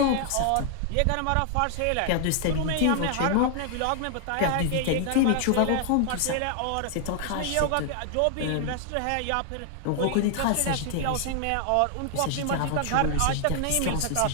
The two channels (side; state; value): both; different; correlation 0.00